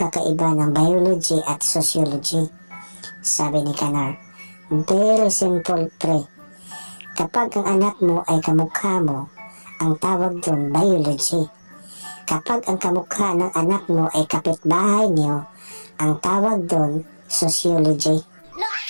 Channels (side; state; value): both; inverted; correlation -1.00